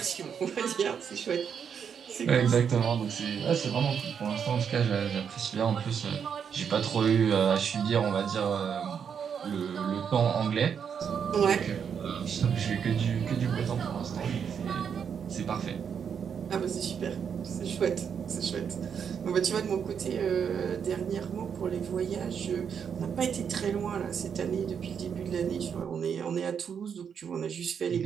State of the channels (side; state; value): left; quieter; 7.3 dB